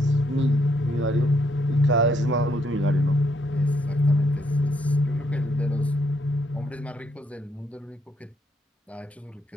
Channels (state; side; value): normal; both; correlation 0.73